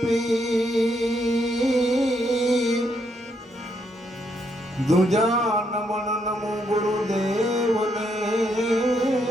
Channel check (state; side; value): normal; both; correlation 0.76